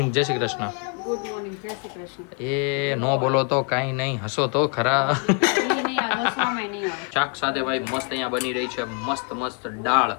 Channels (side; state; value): right; quieter; 37.3 dB